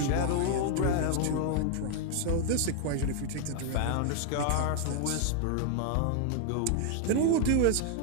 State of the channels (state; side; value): different; both; correlation 0.00